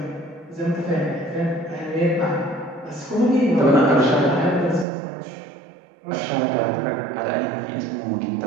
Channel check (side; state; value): left; drops out; at 4.9 s